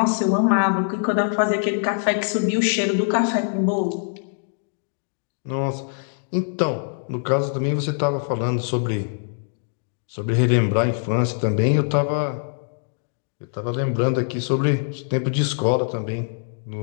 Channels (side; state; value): right; silent; digital silence